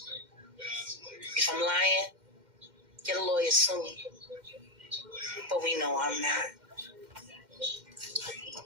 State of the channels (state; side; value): late; left; 2.1 ms